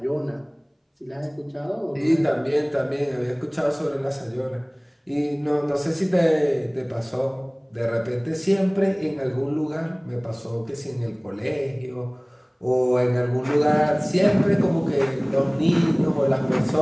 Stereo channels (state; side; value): identical; both; correlation 1.00